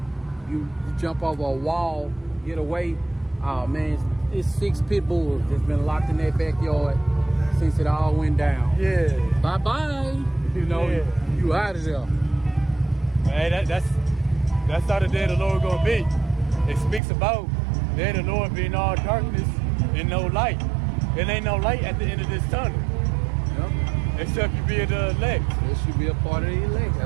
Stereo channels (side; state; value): left; drops out; at 17.0 s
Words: you jump over a wall, get away. Oh man, it's 6 pit bulls that's been locked in that backyard since it all went down. Yeah. Bye bye. You know, yeah, you out of there. Hey, that's how the day of the Lord gonna be. It speaks about the day of the Lord being all darkness and no light. There ain't no light at the end of this tunnel. Yep. Except you be the elect. This should be a part of the elect.